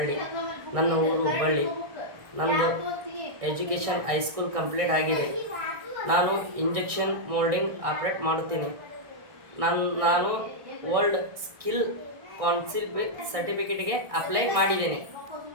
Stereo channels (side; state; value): left; late; 1.6 ms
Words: ನನ್ನ ಊರು ಹುಬ್ಬಳ್ಳಿ. ನಂದು ಎಜುಕೇಷನ್ ಹೈಸ್ಕೂಲ್ ಕಂಪ್ಲೀಟ್ ಆಗಿದೆ. ನಾನು ಇಂಜೆಕ್ಷನ್ ಮೋಲ್ಡಿಂಗ್ ಆಪ್ರೇಟ್ ಮಾಡುತ್ತೀನಿ. ನಾನು ವರ್ಲ್ಡ್ ಸ್ಕಿಲ್ ಕೌನ್ಸಿಲ್ ಸರ್ಟಿಫಿಕೇಟ್ಗೆ ಅಪ್ಲೈ ಮಾಡಿದ್ದೇನೆ.